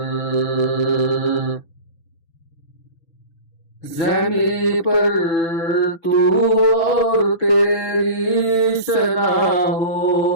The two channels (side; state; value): right; late; 6.0 ms